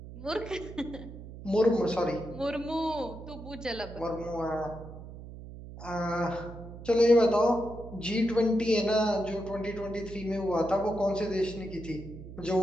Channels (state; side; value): noise; right; hum, 13 dB below the sound